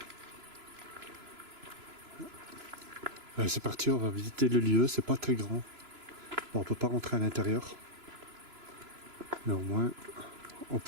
Allez, c'est parti, on va visiter le lieu, c'est pas très grand. Bon, on peut pas rentrer à l'intérieur. Mais au moins, on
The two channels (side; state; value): left; late; 3.0 ms